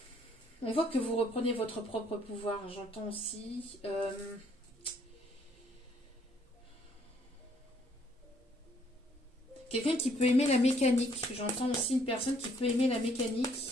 on voit que vous reprenez votre propre pouvoir, j'entends aussi... quelqu'un qui peut aimer la mécanique. J'entends aussi une personne qui peut aimer la mécanique.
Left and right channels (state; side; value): normal; both; correlation 0.65